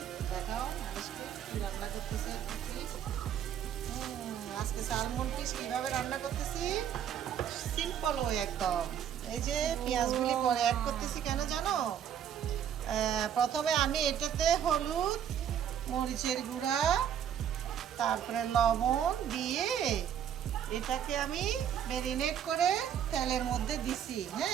দেখাও আজকে কি রান্না করতেছি। আজকে স্যালমন ফিশ কিভাবে রান্না করতেছি? সিম্পল ওয়ে একদম। এই যে পেঁয়াজগুলি পরে অ্যাড করতেছি কেন জানো? প্রথমে আমি এটাতে হলুদ, মরিচের গুঁড়া, তারপরে লবণ দিয়ে এটাকে আমি ম্যারিনেট করে তেলের মধ্যে দিছি,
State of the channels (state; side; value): quieter; left; 9.2 dB